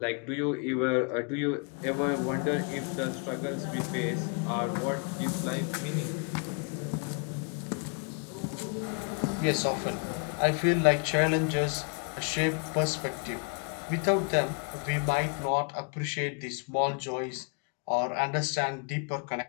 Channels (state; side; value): quieter; right; 37.5 dB